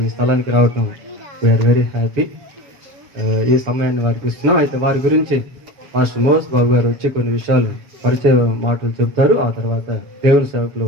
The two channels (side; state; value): left; late; 7.9 ms